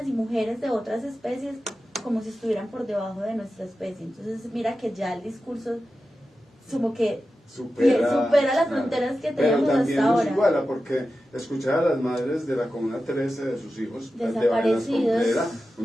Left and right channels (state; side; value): normal; both; correlation 0.92